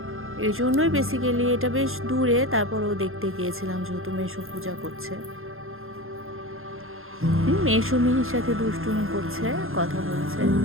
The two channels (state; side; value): late; left; 0.60 ms